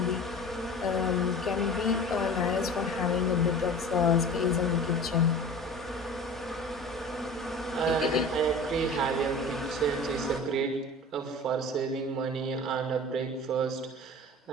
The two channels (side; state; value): both; normal; correlation 0.38